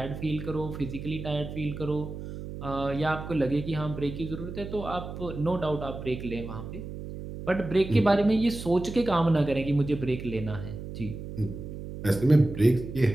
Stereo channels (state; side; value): noise; right; hum, 9 dB below the sound